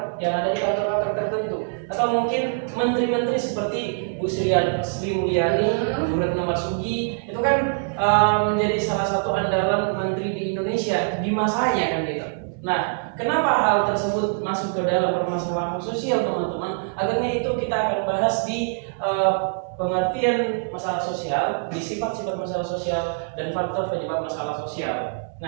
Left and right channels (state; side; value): silent; left; 57 dB below the other